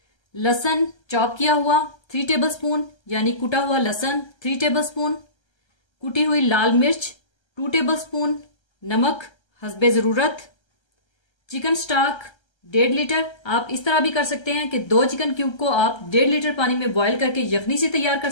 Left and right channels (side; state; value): right; late; 1.3 ms